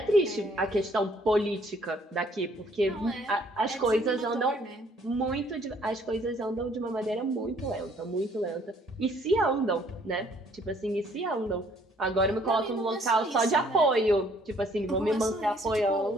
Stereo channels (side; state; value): both; normal; correlation 0.62